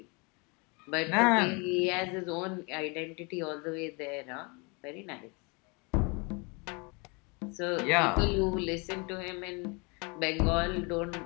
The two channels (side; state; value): right; quieter; 30.6 dB